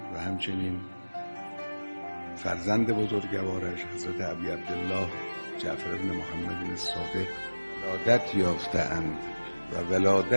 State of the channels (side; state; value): both; inverted; correlation -1.00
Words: و همچنین فرزند بزرگوارش حضرت ابی عبدالله جعفر بن محمد الصادق ولادت یافته‌اند و